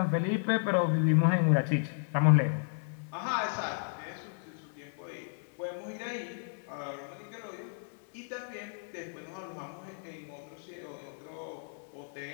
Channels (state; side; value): silent; right; digital silence